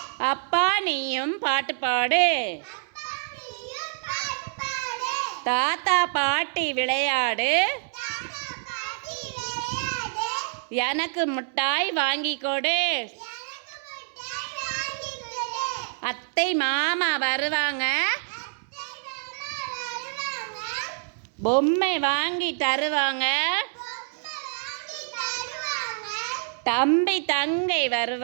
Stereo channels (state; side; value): silent; left; 60 dB below the other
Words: அப்பா நீயும் பாட்டு பாடு. தாத்தா பாட்டி விளையாடு, எனக்கு மிட்டாய் வாங்கி கொடு. அத்தை மாமா வருவாங்க, பொம்மை வாங்கி தருவாங்க. தம்பி தங்கை